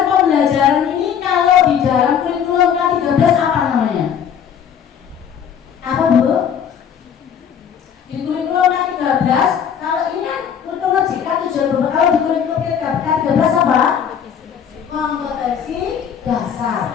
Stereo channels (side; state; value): right; quieter; 8.2 dB